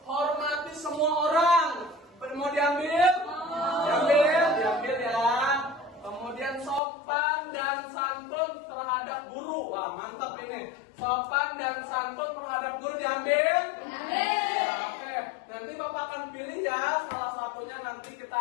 Hormati semua orang. Mau diambil? Diambil ya. Kemudian sopan dan santun terhadap guru. Wah, mantap ini. Sopan dan santun terhadap guru diambil? Oke. Nanti Bapak akan pilih ya. Salah satunya nanti kita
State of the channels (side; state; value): right; drops out; at 6.8 s